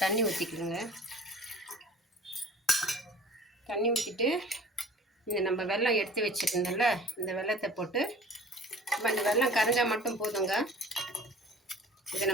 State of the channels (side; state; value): both; normal; correlation 0.45